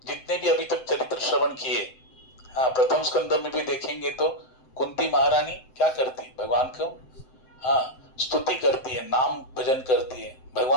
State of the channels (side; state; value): right; late; 7.8 ms